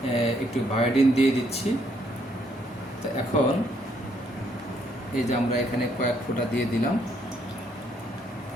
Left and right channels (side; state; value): both; normal; correlation 0.70